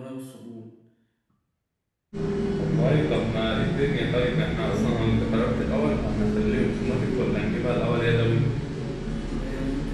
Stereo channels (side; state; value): both; identical; correlation 1.00